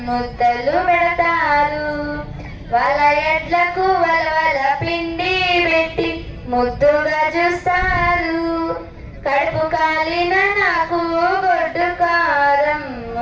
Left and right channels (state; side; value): identical; both; correlation 1.00